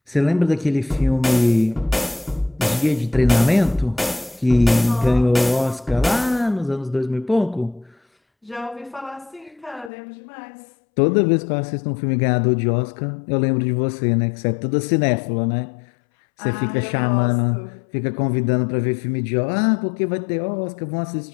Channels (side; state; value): right; drops out; at 9.9 s